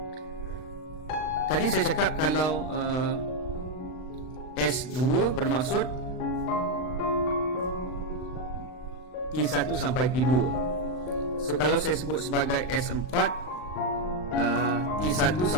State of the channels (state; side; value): late; right; 39 ms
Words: tadi saya cakap kalau S2 bermaksud T1 sampai T2. So kalau saya sebut sebagai S4, T1